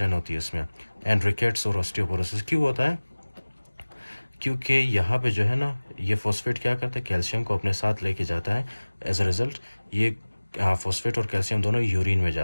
होती है इसमें, एंड रिकेट्स और ऑस्टियोपोरोसिस। क्यों होता है? क्योंकि यहाँ पे जो है ना, ये फॉस्फेट क्या करता है? कैल्शियम को अपने साथ लेके जाता है। एज अ रिजल्ट ये फॉस्फेट और कैल्शियम दोनों यूरिन में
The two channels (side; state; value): both; inverted; correlation -1.00